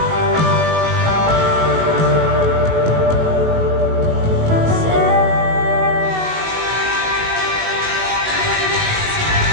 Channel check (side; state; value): left; late; 19 ms